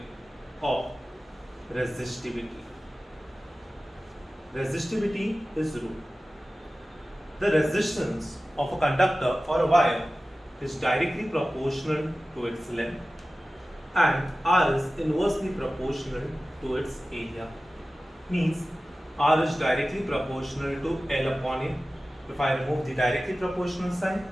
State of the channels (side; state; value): both; normal; correlation 0.96